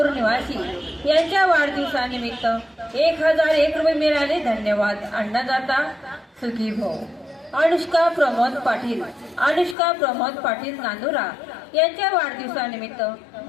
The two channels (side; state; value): right; drops out; at 9.8 s